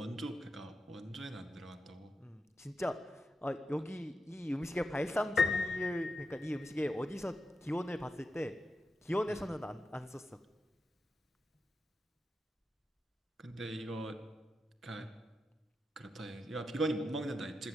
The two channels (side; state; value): both; normal; correlation 0.88